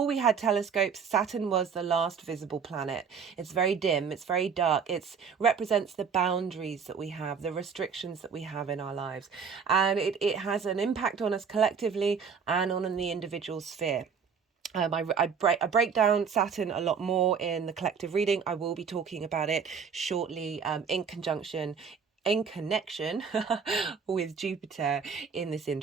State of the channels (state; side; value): quieter; left; 6.3 dB